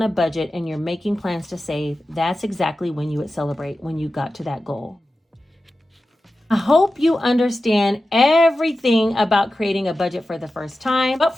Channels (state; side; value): normal; both; correlation 0.93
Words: a budget and you're making plans to save, that's exactly when you would celebrate when you got to that goal. I hope you understand everything about creating a budget for the first time, but